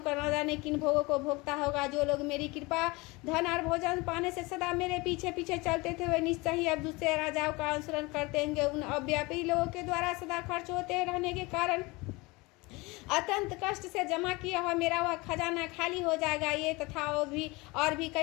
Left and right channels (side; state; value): right; quieter; 24.3 dB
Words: न जाने किन भोगों को भोगता होगा। जो लोग मेरी कृपा धन और भोजन पाने से सदा मेरे पीछे पीछे चलते थे वे निश्चय ही अब दूसरे राजाओं का अनुसरण करते होंगे। उन अव्यापी लोगों के द्वारा सदा खर्च होते रहने के कारण अत्यंत कष्ट से जमा किया हुआ मेरा वह खजाना खाली हो जाएगा। ये तथा और भी